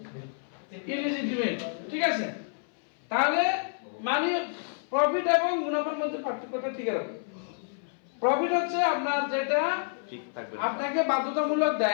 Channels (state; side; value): silent; right; 58 dB below the other